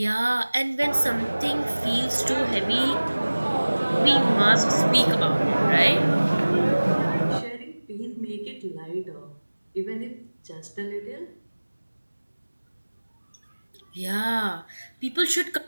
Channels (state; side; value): inverted; both; correlation -1.00